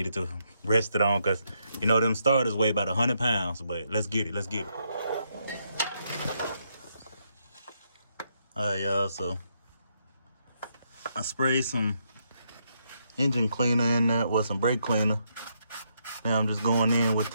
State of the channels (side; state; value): both; inverted; correlation -0.78